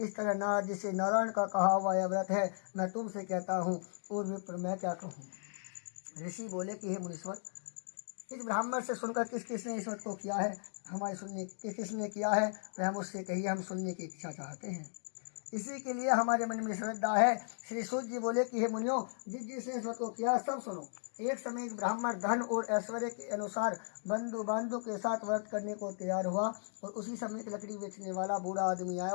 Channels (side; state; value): right; silent; digital silence